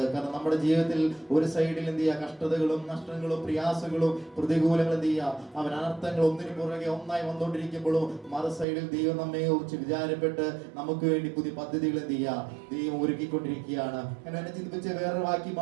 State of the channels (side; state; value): left; drops out; at 8.7 s